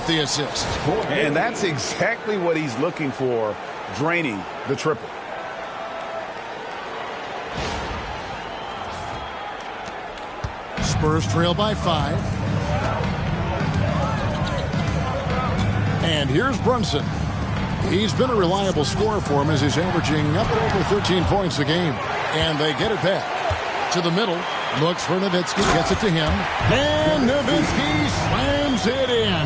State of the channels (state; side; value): identical; both; correlation 1.00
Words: the assist. And that's exactly what he's looking for, draining the triple. Spurs trail by 5. And here's Brunson. He's been a reliable scorer for him as he's averaging up at over 13 points a game. And they get it back to the middle. Looks for Nowitzki, gets it to him. And Nowitzki slams it